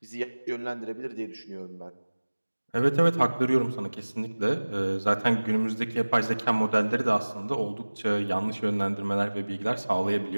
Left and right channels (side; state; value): both; inverted; correlation -1.00